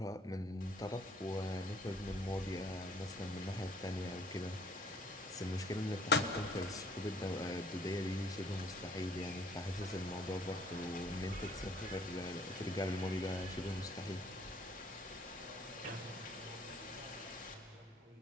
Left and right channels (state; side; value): normal; both; correlation 0.59